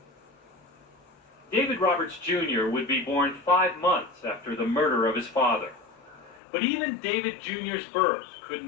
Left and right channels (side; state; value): right; drops out; at 6.4 s